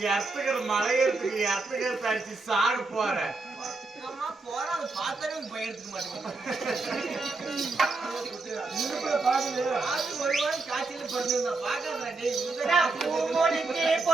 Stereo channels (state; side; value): quieter; left; 3.6 dB